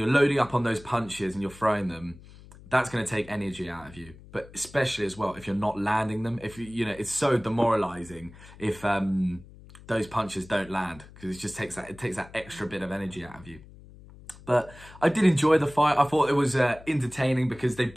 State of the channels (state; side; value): noise; left; hum, 20 dB below the sound